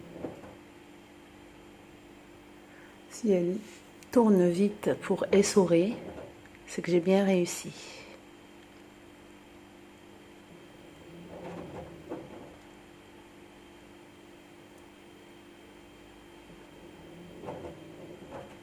Si elle tourne vite pour essorer, c'est que j'ai bien réussi.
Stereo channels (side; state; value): both; identical; correlation 1.00